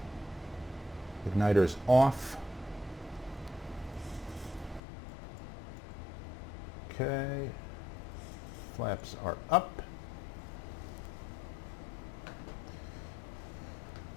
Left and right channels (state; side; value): drops out; right; at 4.8 s